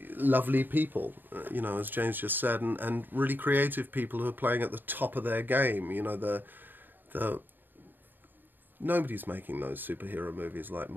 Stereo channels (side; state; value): left; late; 0.092 ms